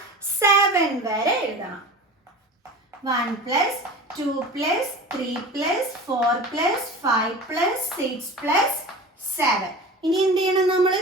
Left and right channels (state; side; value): normal; both; correlation 0.35